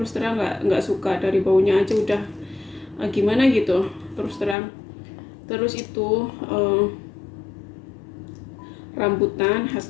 terang nggak suka, dari baunya aja udah gimana gitu terus terang. Terus itu rambutan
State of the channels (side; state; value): right; drops out; at 4.5 s